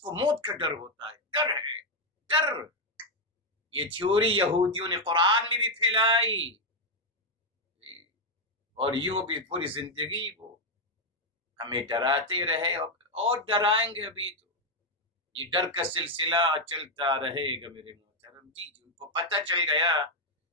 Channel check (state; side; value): normal; both; correlation 0.03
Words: موت کا ڈر ہوتا ہے. ڈر ہے، ڈر. یہ تھیوری یہودیوں نے قرآن میں بھی پھیلائی اور یوں بھی پوری زندگی وہ ہمیں ڈراتے رہے اور ڈرائیں گے. ابھی تو یہ ڈر کا سلسلہ چلتا رہے گا میرے محترم. جی ان کو پتہ چل گیا